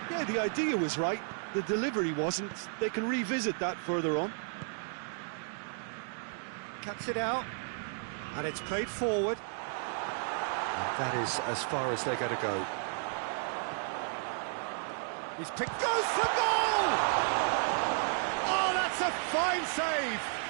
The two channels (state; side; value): silent; left; 56 dB below the other